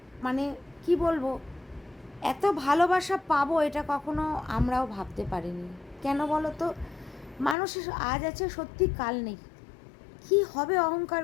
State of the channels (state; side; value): drops out; right; at 7.6 s